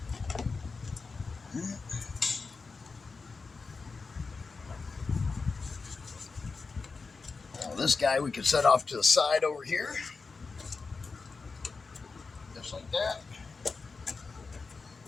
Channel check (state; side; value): quieter; right; 4.4 dB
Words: Now this guy we can set off to the side over here. Just like that.